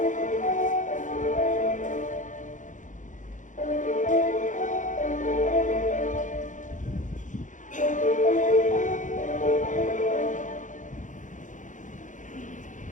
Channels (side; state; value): right; late; 0.37 ms